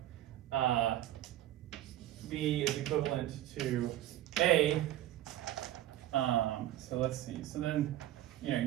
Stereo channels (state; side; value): quieter; left; 13.7 dB